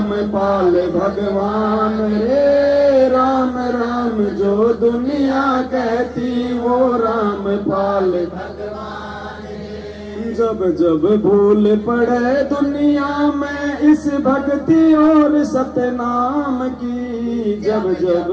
पाल भगवान रे। राम राम जो दुनिया कहती, वो राम पाल भगवान रे। जब जब भूल पड़े दुनिया में इस भक्ति और सतनाम की, जब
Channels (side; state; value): both; identical; correlation 1.00